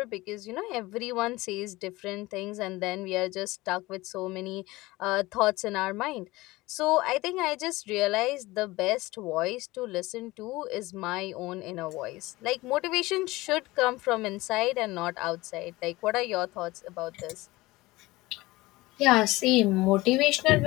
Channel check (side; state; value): right; quieter; 20.1 dB